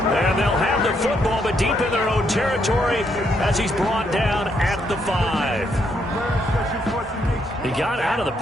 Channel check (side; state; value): both; normal; correlation 0.75